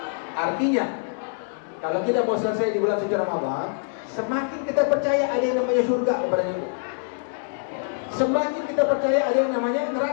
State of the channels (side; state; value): right; silent; 62 dB below the other